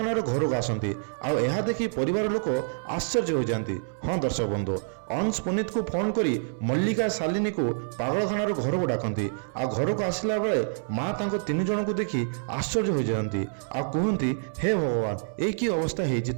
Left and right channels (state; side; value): silent; left; 60 dB below the other